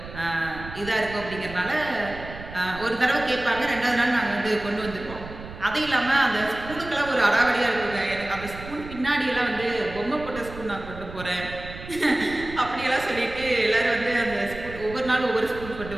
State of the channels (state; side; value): noise; right; rumble, 13 dB below the sound